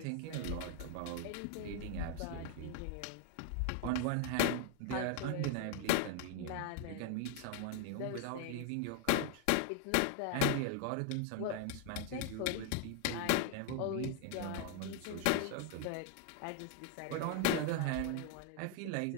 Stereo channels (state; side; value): different; both; correlation 0.00